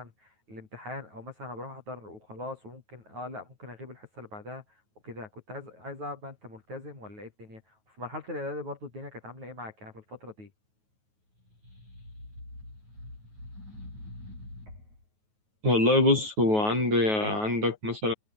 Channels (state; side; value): late; left; 9.3 ms